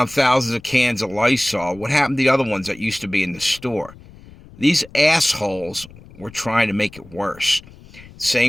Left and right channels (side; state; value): left; noise; rumble, 21 dB below the sound